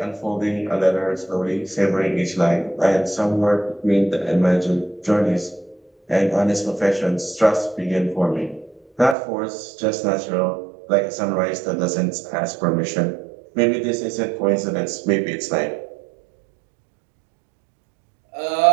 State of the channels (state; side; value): drops out; left; at 9.2 s